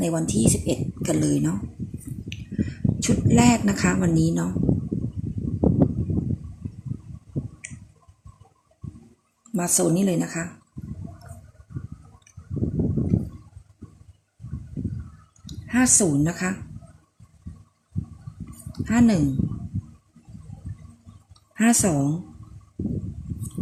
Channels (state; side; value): identical; both; correlation 1.00